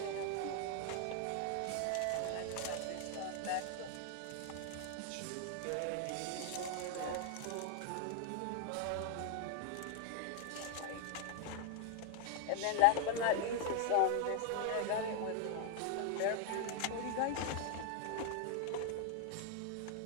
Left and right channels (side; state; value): both; different; correlation 0.00